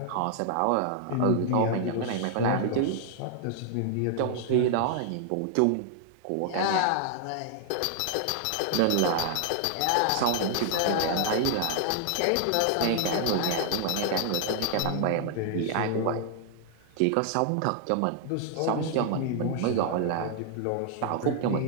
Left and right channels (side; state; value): both; different; correlation 0.00